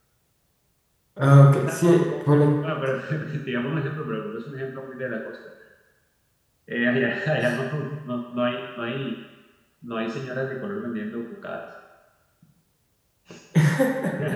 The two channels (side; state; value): both; identical; correlation 1.00